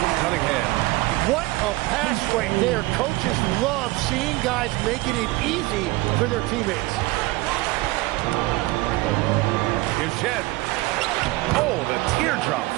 from Cunningham. What a pass right there. Coaches love seeing guys making it easy for their teammates. Here's Shed. Oh, the teardrop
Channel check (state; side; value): quieter; left; 20.8 dB